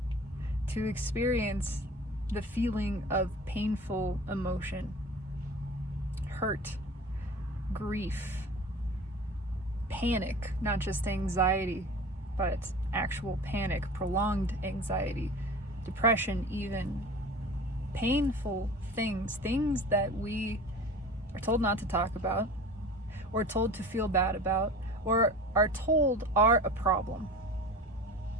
To experience the feeling of painful emotion, hurt, grief, panic, not just anxiety, but actual panic, prolonged anxiety, depression even, painful things that we are told not to talk about, or told to feel bad about, or are told are a problem.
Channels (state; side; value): normal; both; correlation 0.38